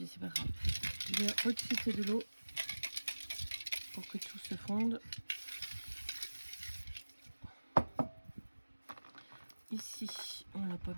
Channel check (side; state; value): both; inverted; correlation -1.00